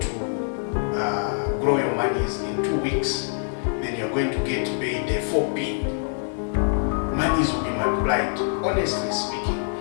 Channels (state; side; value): silent; right; digital silence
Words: grow your monies in 2 weeks. Then you're going to get paid 4p. Monies will be multiplied. Honestly speaking,